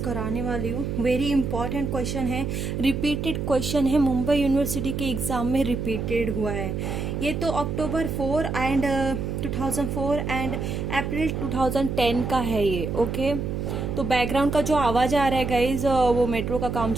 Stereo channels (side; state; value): right; noise; hum, 3 dB below the sound